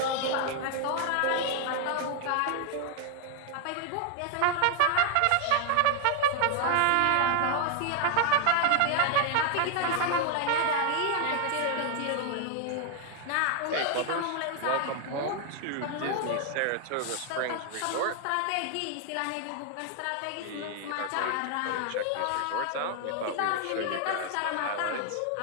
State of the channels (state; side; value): different; both; correlation 0.00